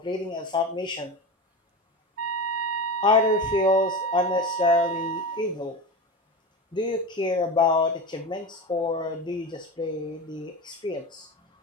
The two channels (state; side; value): normal; both; correlation 0.25